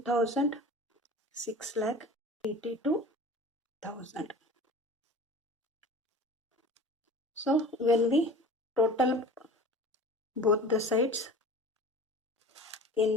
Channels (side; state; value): both; normal; correlation 0.40